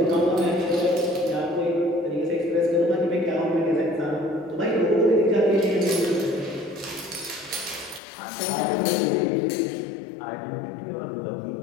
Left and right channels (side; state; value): right; drops out; at 8.0 s